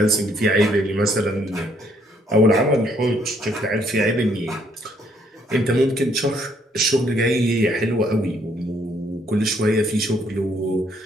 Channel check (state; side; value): normal; both; correlation 0.68